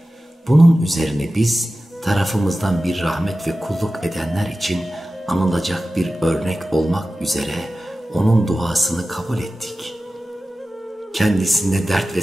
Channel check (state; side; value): normal; both; correlation 0.95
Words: Bunun üzerine biz tarafımızdan bir rahmet ve kulluk edenler için anılacak bir örnek olmak üzere onun duasını kabul ettik. Kendisinde dert ve